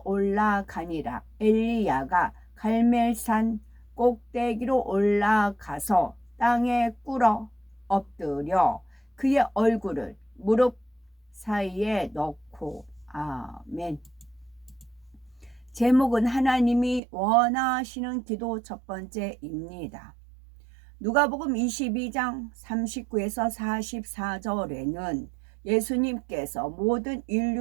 올라가니라. 엘리야가 갈멜산 꼭대기로 올라가서 땅에 꿇어 엎드려 그의 얼굴을 무릎 사이에 넣고. 아멘. 제목은 하나님이 원하시는 기도 첫 번째입니다. 누가복음 22장 39에서 44절에는 예수님께서 모든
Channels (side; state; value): left; drops out; at 17.0 s